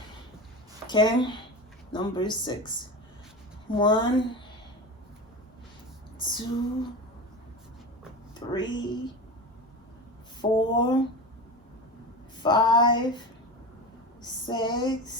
Okay, number 6. 1, 2, 3, 4, 5,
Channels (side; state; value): both; normal; correlation 0.26